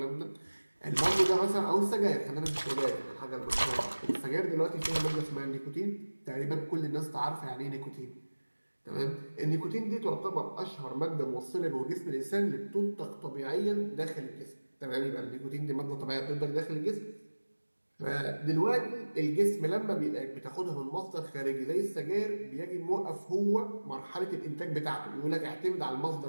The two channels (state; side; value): inverted; both; correlation -1.00